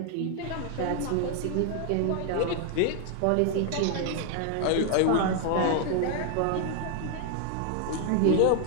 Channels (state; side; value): different; both; correlation 0.00